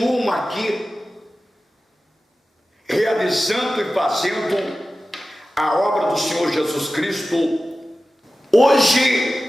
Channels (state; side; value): normal; both; correlation 0.95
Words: aqui, realizando e fazendo a obra do Senhor Jesus Cristo.